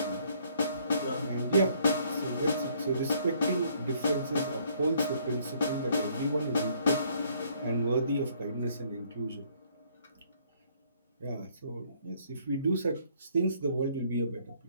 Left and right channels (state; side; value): inverted; both; correlation -0.64